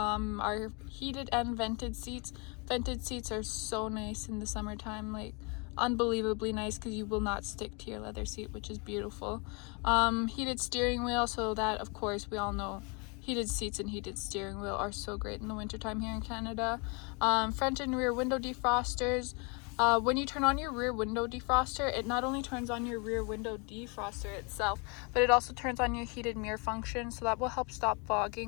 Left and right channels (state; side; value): quieter; right; 32.4 dB